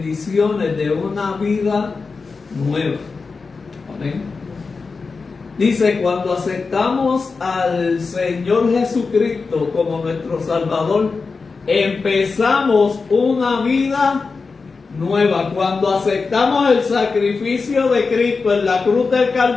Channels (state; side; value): quieter; right; 4.5 dB